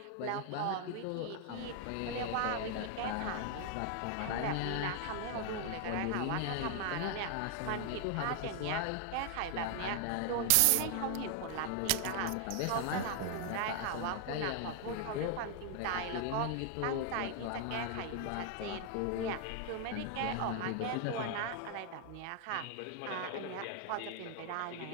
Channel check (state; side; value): different; both; correlation 0.00